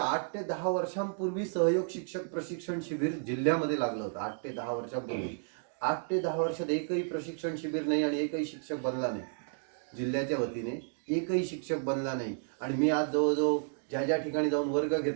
ते 10 वर्षांपूर्वी सहयोग शिक्षक प्रशिक्षण शिबिर जिल्ह्यामध्ये लागलं होतं। 8 ते 10 वर्षांपूर्वी, 8 ते 10 वर्षात एकही प्रशिक्षण शिबिर नाही आणि एकही शिक्षक बनला नाही। जिल्ह्याच्या वतीने एकही शिक्षक बनला नाही। आणि मी आज जवळजवळ ज्या ठिकाणी जाऊन वर्ग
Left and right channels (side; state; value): left; silent; digital silence